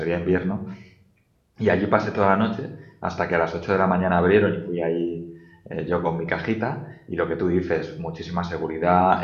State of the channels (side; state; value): both; identical; correlation 1.00